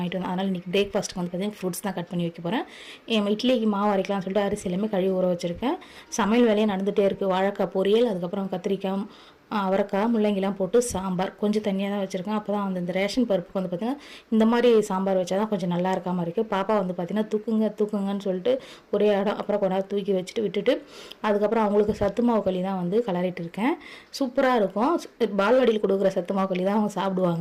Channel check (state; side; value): identical; both; correlation 1.00